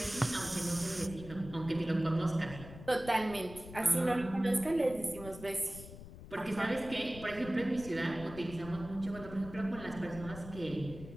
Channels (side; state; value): left; noise; rumble, 14 dB below the sound